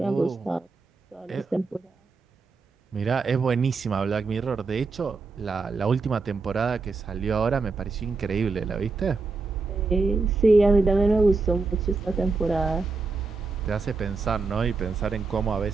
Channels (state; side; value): quieter; left; 4.1 dB